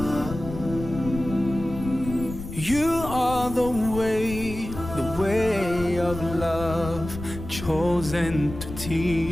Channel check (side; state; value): left; noise; rumble, 10 dB below the sound